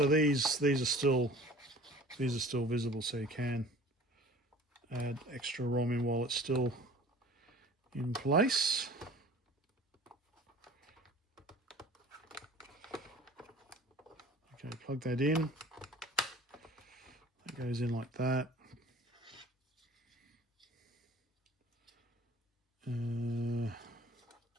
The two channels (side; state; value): both; normal; correlation 0.46